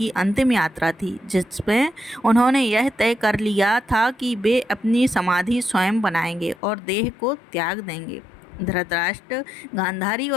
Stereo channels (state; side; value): drops out; right; at 6.6 s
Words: अंतिम यात्रा थी, जिसमें उन्होंने यह तय कर लिया था कि वे अपनी समाधि स्वयं बनाएंगे और देह को त्याग देंगे। धृतराष्ट्र, गांधारी